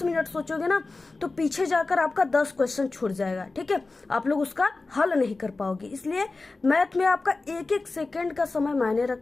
मिनट सोचोगे ना, तो पीछे जाकर आपका 10 क्वेश्चन छूट जाएगा, ठीक है। आप लोग उसका हल नहीं कर पाओगे। इसलिए मैथ में आपका एक एक सेकेंड का समय मायने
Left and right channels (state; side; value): quieter; right; 3.5 dB